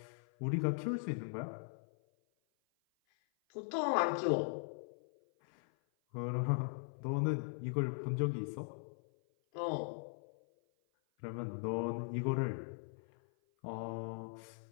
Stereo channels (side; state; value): right; silent; 51 dB below the other